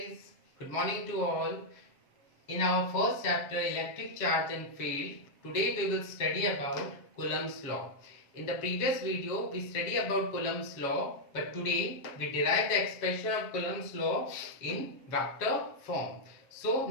good morning to all. In our first chapter electric charge and field, today we will study about Coulomb's law. In the previous video we study about Coulomb's law, but today we derive the expression of Coulomb's law in vector form. So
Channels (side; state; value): right; late; 7.4 ms